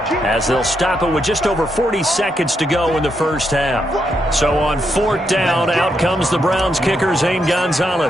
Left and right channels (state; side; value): normal; both; correlation 0.80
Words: as they'll stop it with just over 40 seconds to go in the 1st half. So on 4th down, out comes the Browns kicker, Zane